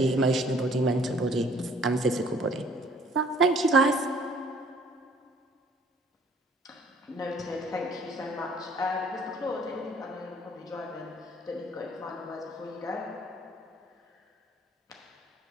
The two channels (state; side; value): normal; both; correlation 0.57